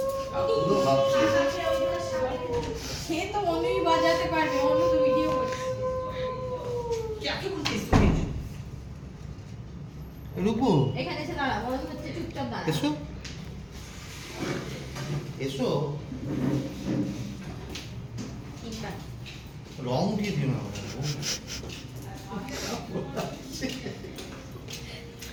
তো অনুই বাজাতে পারবে, অনু তো ভিডিও করছে। রূপু এখানে এসে দাঁড়া, বড় হচ্ছে, চুপচাপ দাঁড়া। এসো এসো। রং উঠিয়ে দিও না।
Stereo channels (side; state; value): both; identical; correlation 1.00